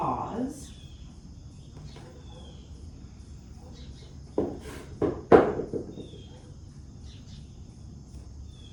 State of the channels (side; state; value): both; identical; correlation 1.00